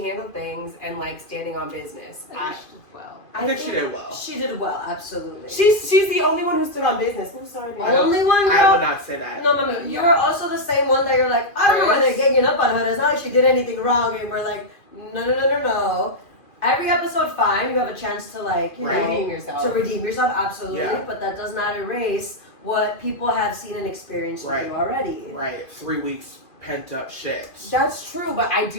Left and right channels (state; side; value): late; right; 2.4 ms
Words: handled things and like standing on business. I think she did well. I think she did well. She did well, absolutely. She's the only one who stood on business. I'm sorry, baby. Only one girl. I would not say that. No, Mami, you were also the same one that you're like, I don't know why they're ganging up on her. It's not like she did anything wrong. And we're like, no. Every episode, fine. You have a chance to like, you know, Redeem yourself. to redeem yourself, absolutely. Yeah. But that does not erase what people have seen and experienced with Right. you already. Right, 3 weeks pent up shit. That's true, but I